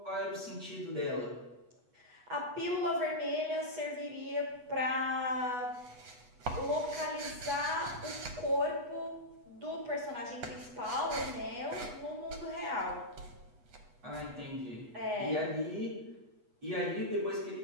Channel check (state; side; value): late; left; 8.2 ms